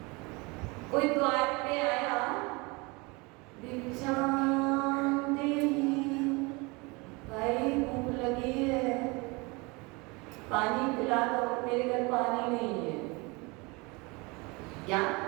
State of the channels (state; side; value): quieter; left; 26.7 dB